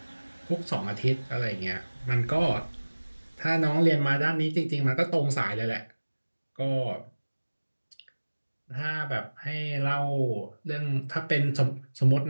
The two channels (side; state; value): both; inverted; correlation -1.00